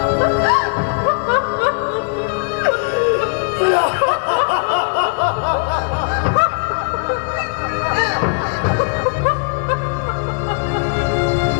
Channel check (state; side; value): quieter; right; 37.2 dB